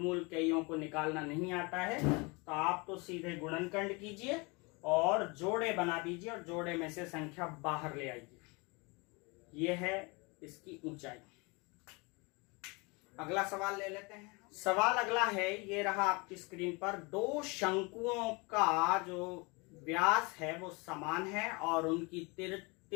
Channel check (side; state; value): right; quieter; 28.2 dB